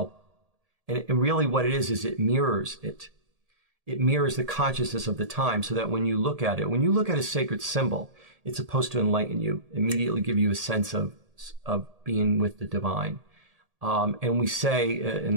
And really what it is it mirrors it. It mirrors the consciousness of the time, so that when you look at it, when you look at a sacred symbol, it's supposed to enlighten you, immediately give you a sense of being with the divine. And we say in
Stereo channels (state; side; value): late; left; 1.7 ms